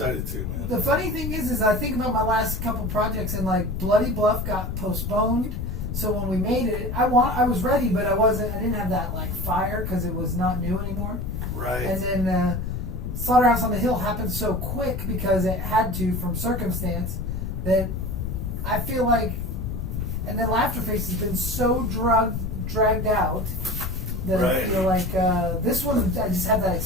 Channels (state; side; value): noise; left; rumble, 4 dB below the sound